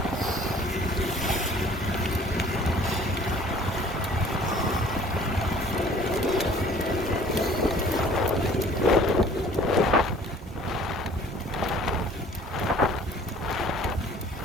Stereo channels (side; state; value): both; normal; correlation 0.52